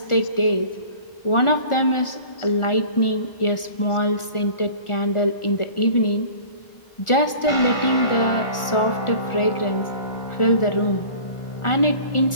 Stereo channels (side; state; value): right; late; 1.4 ms